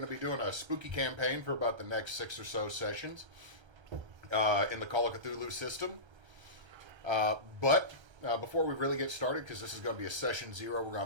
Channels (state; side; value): late; left; 1.3 ms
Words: to be doing a spooky campaign for about the next 6 or so sessions in the Call of Cthulhu system. But before we really get started, because this is going to be a session 0, we're